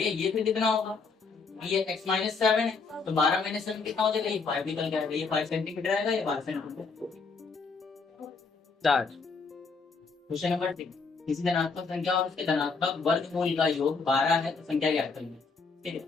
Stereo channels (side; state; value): right; quieter; 4.6 dB